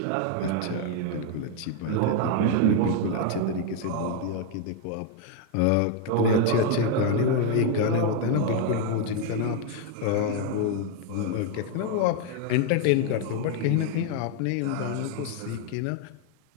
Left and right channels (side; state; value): both; different; correlation 0.01